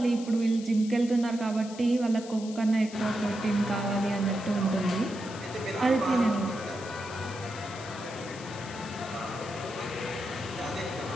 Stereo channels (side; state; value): left; noise; hiss, 16 dB below the sound